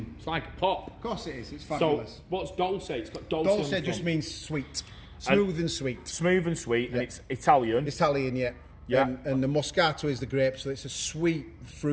It's like a pop. Of course it is. It's fabulous. So what's Dolce? It's got Dolce. Dolce just means sweet. Smooth and sweet. Smooth and sweet, and it's Italian. Italian, yeah. Yeah. And the Moscato is the grape, so it's a sweet,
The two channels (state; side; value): identical; both; correlation 1.00